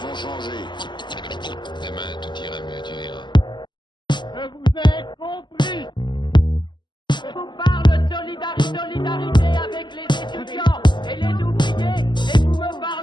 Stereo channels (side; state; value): right; late; 0.22 ms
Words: changer. Demain, tout ira mieux, tu verras. Je vous ai compris. Je vous parle de solidarité avec les étudiants et les ouvriers, et vous